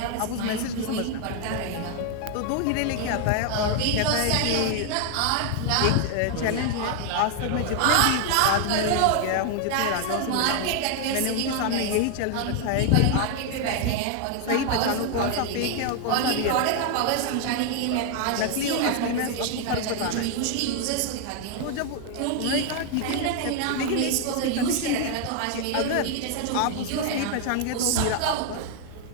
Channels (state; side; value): different; both; correlation 0.00